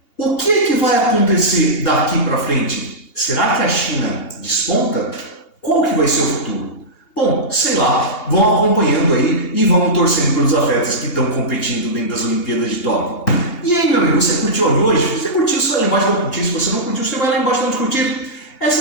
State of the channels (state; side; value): late; right; 2.8 ms